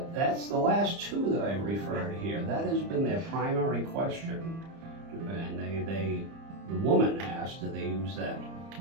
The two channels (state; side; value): late; left; 30 ms